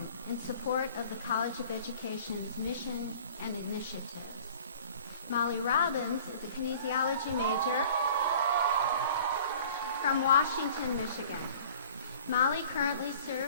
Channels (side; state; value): both; inverted; correlation -0.48